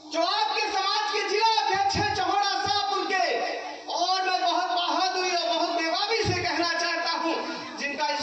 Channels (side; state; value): both; identical; correlation 1.00